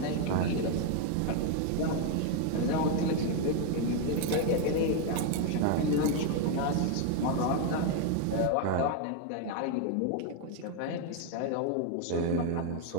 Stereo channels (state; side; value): different; both; correlation 0.01